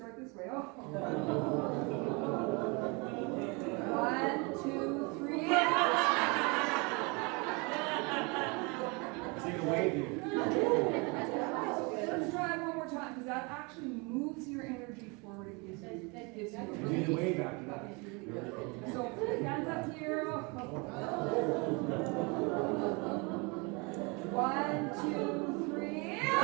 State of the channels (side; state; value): left; quieter; 29.6 dB